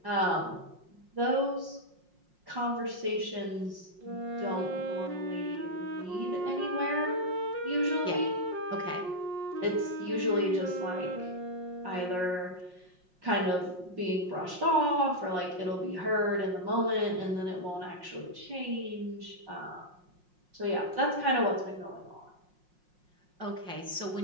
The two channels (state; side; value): late; left; 5.6 ms